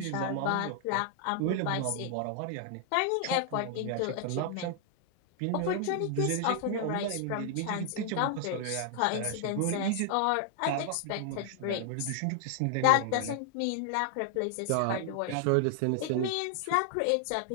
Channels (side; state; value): both; different; correlation 0.00